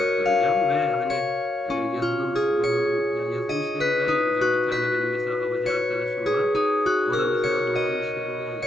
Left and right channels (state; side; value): normal; both; correlation 0.82